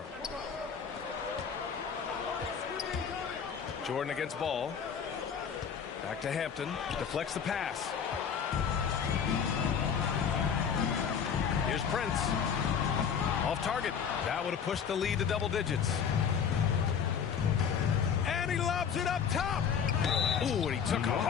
Jordan against Ball. Back to Hampton. Deflects the pass. Here's Prince. Off target. That would have pushed the lead to double digits. And he lobs it up top. Ooh, and he took a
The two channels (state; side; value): quieter; right; 7.2 dB